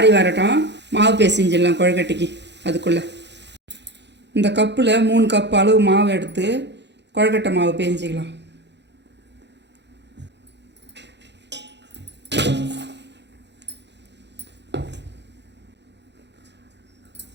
வரட்டும். மாவு பேசிஞ்சிடலாம் கொழுக்கட்டைக்கு. அதுக்குள்ளே இந்த கப்பில் 3 கப் அளவு மாவு எடுத்து கொழுக்கட்டை மாவு பேஞ்சிக்கலாம்.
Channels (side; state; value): left; late; 0.51 ms